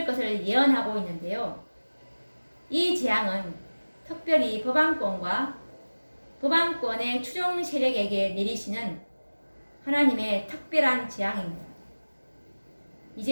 것을 예언하고 있는데요. 이 재앙은 특별히 버방꾼과 버방꾼의 추종 세력에게 내리시는 하나님의 특별한 재앙입니다.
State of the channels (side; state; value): both; inverted; correlation -1.00